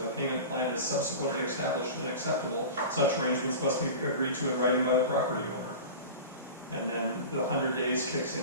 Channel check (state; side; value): inverted; both; correlation -0.32